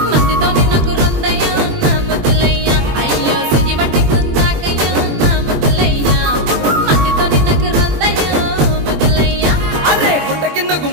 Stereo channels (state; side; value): late; left; 21 ms